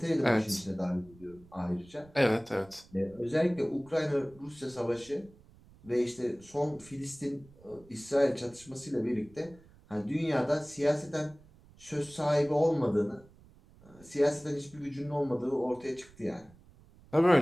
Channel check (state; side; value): noise; right; rumble, 25 dB below the sound